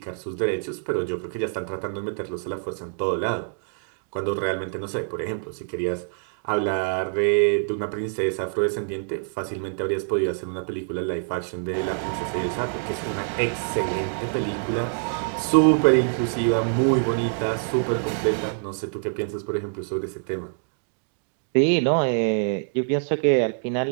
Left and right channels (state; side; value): silent; left; digital silence